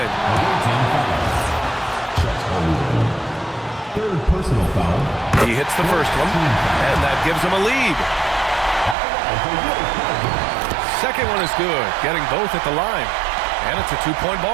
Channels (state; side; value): drops out; left; at 9.0 s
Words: Third personal foul. He hits the first one, and that gives him a lead. Second one is good, getting both at the line. And it's a 2-point